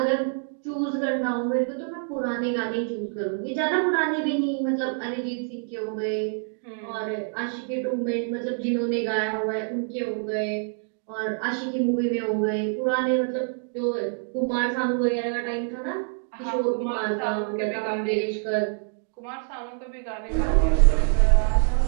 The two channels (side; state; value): left; silent; 56 dB below the other